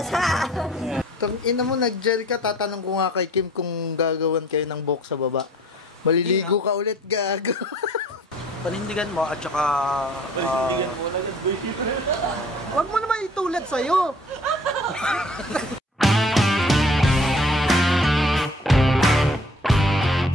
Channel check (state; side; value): normal; both; correlation 0.52